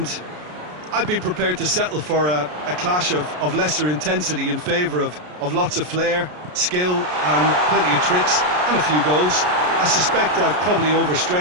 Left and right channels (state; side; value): late; left; 33 ms